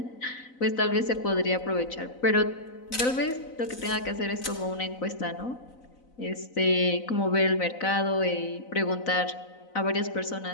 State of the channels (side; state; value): right; late; 4.0 ms